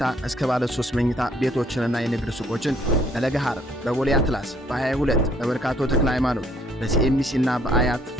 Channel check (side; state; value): both; normal; correlation 0.64